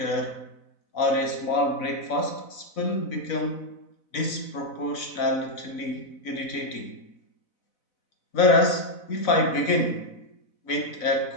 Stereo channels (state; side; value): late; right; 4.0 ms